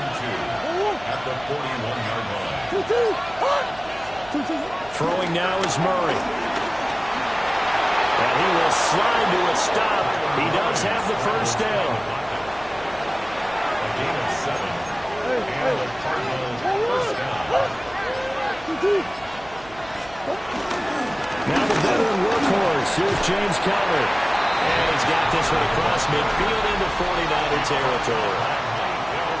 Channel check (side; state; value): right; noise; hum, 21 dB below the sound